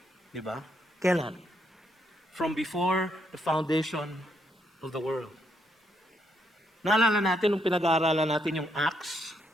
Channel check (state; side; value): normal; both; correlation 0.76